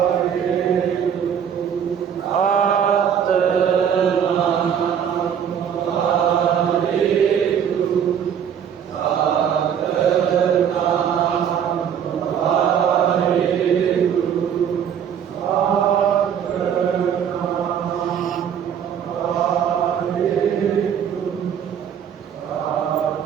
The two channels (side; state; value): left; quieter; 8.5 dB